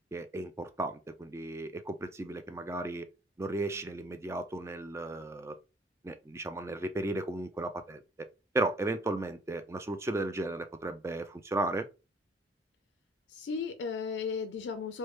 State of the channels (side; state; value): both; normal; correlation 0.56